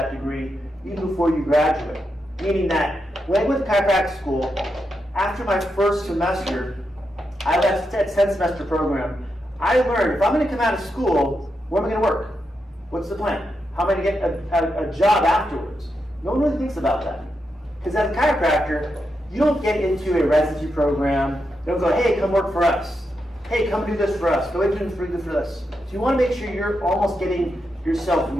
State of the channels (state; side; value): normal; both; correlation 0.85